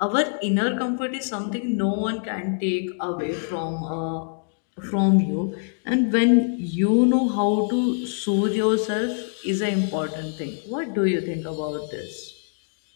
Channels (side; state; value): right; silent; digital silence